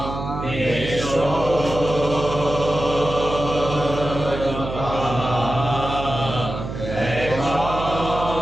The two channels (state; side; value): noise; right; hum, 7 dB below the sound